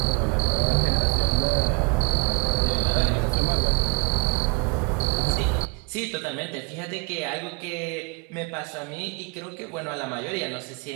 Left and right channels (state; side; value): quieter; left; 31.7 dB